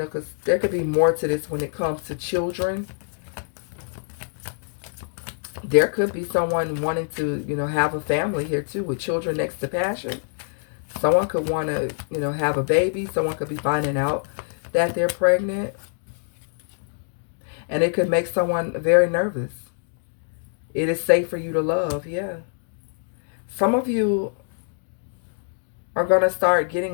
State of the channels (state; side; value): silent; right; digital silence